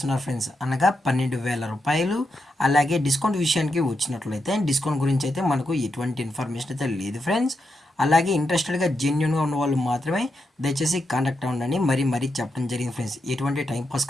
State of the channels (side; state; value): both; normal; correlation 0.85